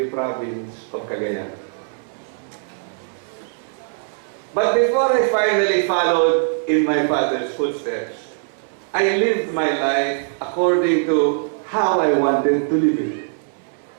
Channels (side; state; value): left; silent; 63 dB below the other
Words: province of Cagayan. But before I finally followed in my father's footsteps, I lived my life according to how I wanted to live it.